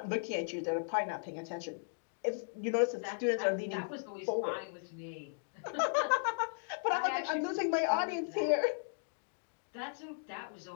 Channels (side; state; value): right; silent; digital silence